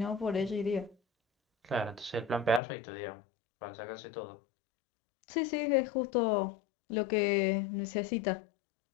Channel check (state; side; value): drops out; right; at 2.6 s